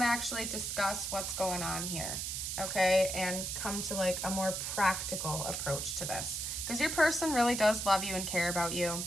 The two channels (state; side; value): noise; right; hiss, 3 dB below the sound